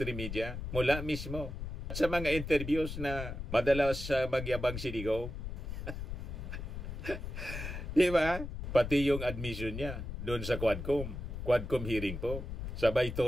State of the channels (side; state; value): left; noise; rumble, 6 dB below the sound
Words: media, mula mismo. At sa mga interviews na madalas magyabang si Digong. Di ba? Pati yung admission niya doon sa Quadcom hearing po. Sabay